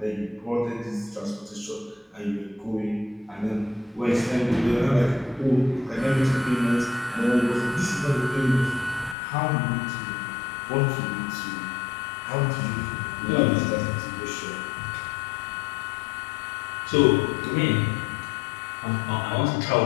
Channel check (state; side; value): drops out; right; at 9.2 s